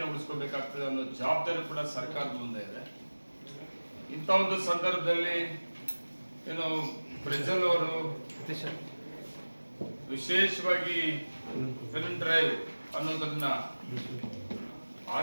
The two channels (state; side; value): inverted; both; correlation -1.00